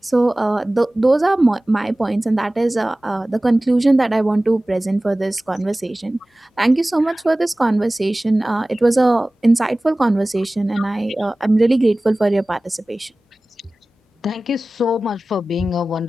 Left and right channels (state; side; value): normal; both; correlation 0.98